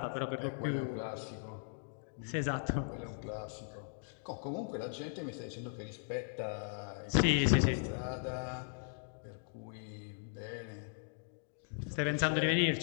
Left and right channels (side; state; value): right; silent; digital silence